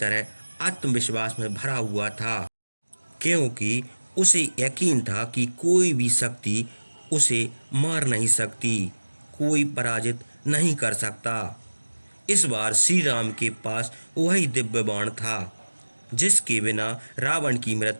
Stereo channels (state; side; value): inverted; both; correlation -1.00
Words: आत्मविश्वास में भरा हुआ था, क्योंकि उसे यकीन था कि कोई भी शक्ति उसे मार नहीं सकती, कोई पराजित नहीं कर सकता। इस बार श्री राम के पास वही दिव्य बाण था जिसके बिना रावण की